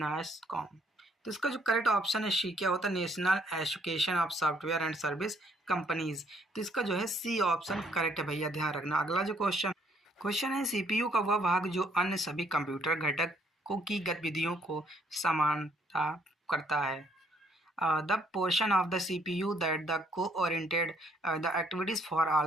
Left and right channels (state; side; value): normal; both; correlation 0.67